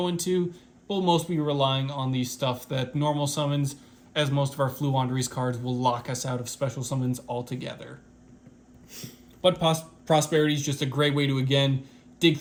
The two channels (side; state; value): both; identical; correlation 1.00